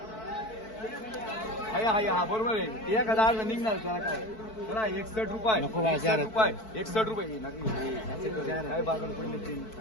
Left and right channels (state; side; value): late; right; 4.6 ms